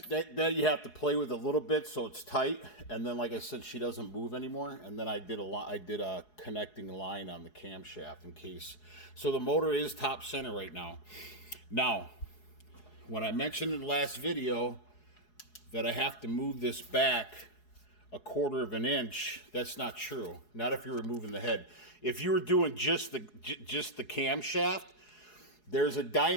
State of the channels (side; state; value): right; late; 4.8 ms